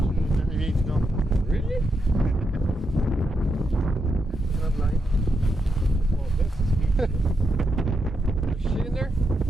there. You need to go. Really? There's shit in there?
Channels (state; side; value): normal; both; correlation 0.83